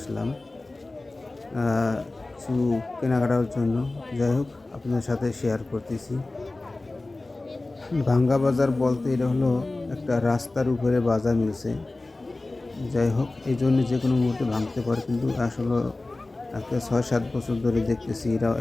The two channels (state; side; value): quieter; right; 3.1 dB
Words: কিছু কেনাকাটার জন্য। যাই হোক, আপনাদের সাথে শেয়ার করতেছি। ভাঙ্গা বাজার বলতে এটা হলো একটা রাস্তার উপরে বাজার মিলছে। যাই হোক, এই জন্য যে কোনো মুহূর্তে ভাঙতে পারে, কিন্তু আসলে একটা 6-7 বছর ধরে দেখতেছি এরা